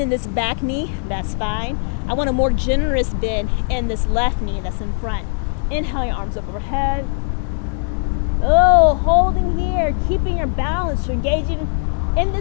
this back knee, that's fine. I want a more generous bend in this left knee that's in front. Inhale, your arms up overhead. Oh, holding here, keeping your balance. You're engaging in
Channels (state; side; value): silent; right; digital silence